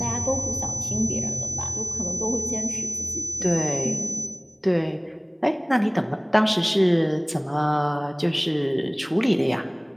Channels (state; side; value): identical; both; correlation 1.00